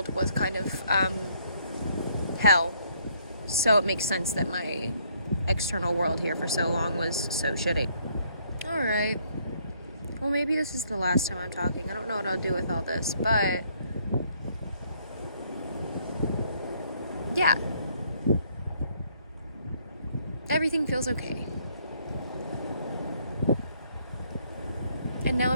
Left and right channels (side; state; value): both; inverted; correlation -0.67